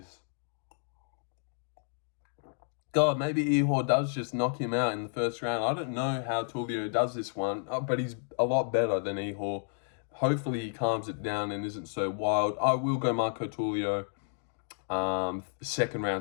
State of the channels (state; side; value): silent; right; digital silence